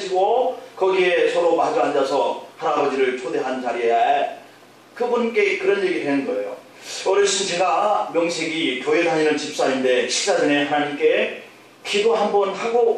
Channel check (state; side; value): identical; both; correlation 1.00